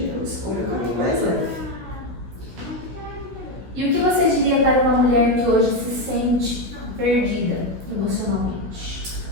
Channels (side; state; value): left; late; 16 ms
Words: eu escolho o caminho mais leve. E o que você diria para uma mulher que hoje se sente perdida emocionalmente?